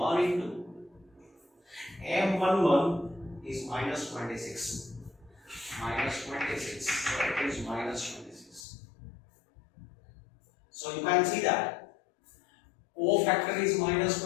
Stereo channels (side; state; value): right; drops out; at 8.7 s